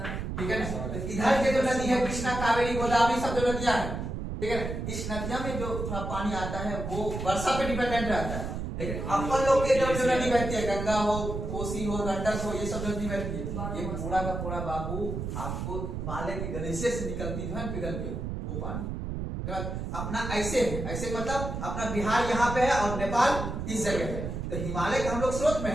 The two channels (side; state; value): right; noise; rumble, 4 dB below the sound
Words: ठीक है ना। तो इधर के जो नदी है कृष्णा, कावेरी, गोदावरी सब जो नदियां हैं, ठीक है ना, इस नदियों में जो थोड़ा पानी आता है वो वर्षा पे डिपेंडेंट रहता है। लेकिन अपन लोग के जो नदी बहती है, गंगा हो, कोसी हो, गंडक हो, ये सब नदी बहती है, ये पूरा का पूरा बाबू आपको हिमालय के ग्लेशियर से निकलती है पिघल के, वो पानी। अपना ऐसे है, ऐसे मतलब अपना बिहार यहाँ पे है और नेपाल इस जगह है, तो हिमालय का हम लोग स्रोत में